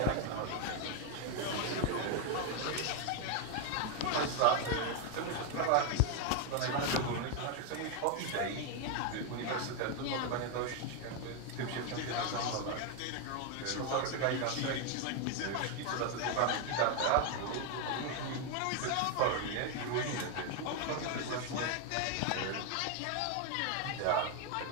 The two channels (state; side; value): different; both; correlation 0.01